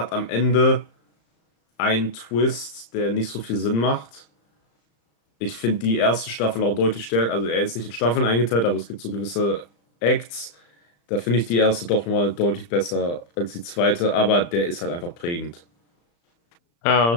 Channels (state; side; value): late; right; 35 ms